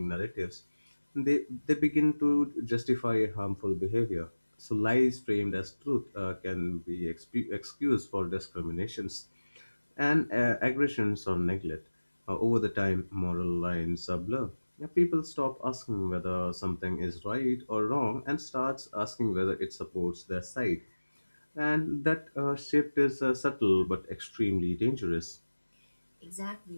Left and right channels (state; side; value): inverted; both; correlation -1.00